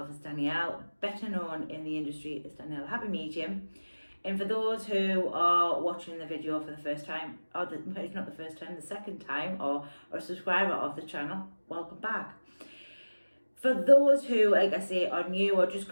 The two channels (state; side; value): inverted; both; correlation -1.00